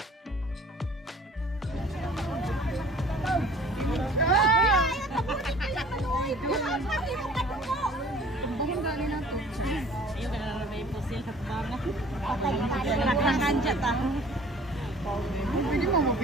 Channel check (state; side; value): normal; both; correlation 0.50